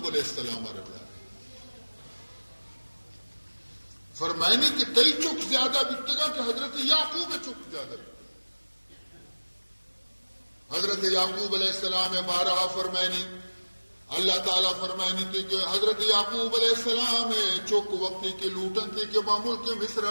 علیہ السلام رضا فرمائنی کہ کئی چک زیادہ بکتگا کہ حضرت یعقوب چک زیادہ حضرت یعقوب علیہ السلام بارہا فرمائنی اللہ تعالیٰ فرمائنی تھی کہ حضرت یعقوب علیہ السلام چک وقتی کے لوٹن تھی کہ معمول کے مصرہ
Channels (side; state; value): both; inverted; correlation -1.00